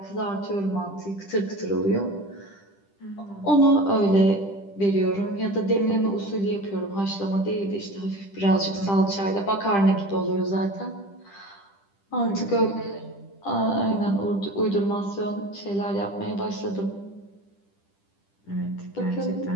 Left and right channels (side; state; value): right; late; 10 ms